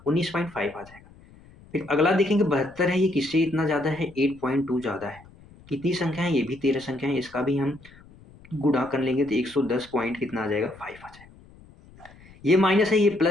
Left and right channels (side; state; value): left; noise; rumble, 24 dB below the sound